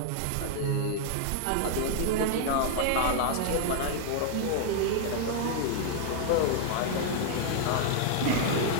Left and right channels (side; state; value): both; different; correlation 0.00